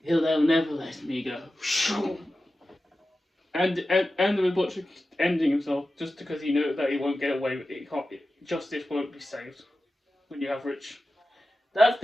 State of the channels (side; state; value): both; normal; correlation 0.93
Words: They'll never let me go. And the butcher ending himself just because he knows that he won't get away with it. Justice won't be saved when you have rich. That's